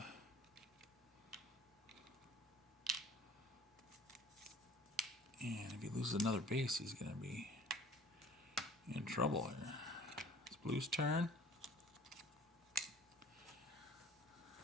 And if he loses another base, he's going to be in trouble here. It's blue's turn.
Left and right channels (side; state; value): both; normal; correlation 0.49